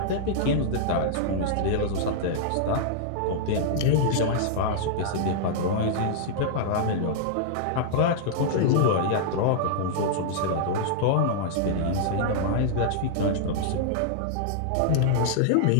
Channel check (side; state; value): both; different; correlation -0.01